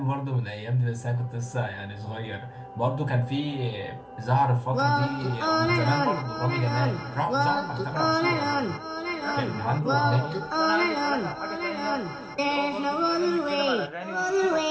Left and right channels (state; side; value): identical; both; correlation 1.00